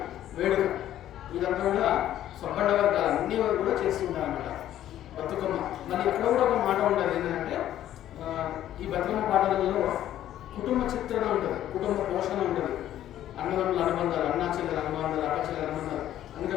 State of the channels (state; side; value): quieter; right; 12.2 dB